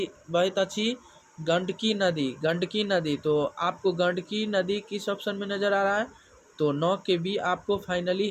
बहैत अछि, गंडकी नदी, गंडकी नदी। तो आपको गंडकी नदी किस ऑप्शन में नज़र आ रहा है, तो 9 के बी आपको फाइनली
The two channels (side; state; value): both; identical; correlation 1.00